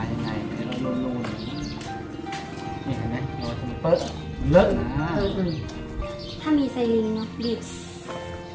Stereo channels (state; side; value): identical; both; correlation 1.00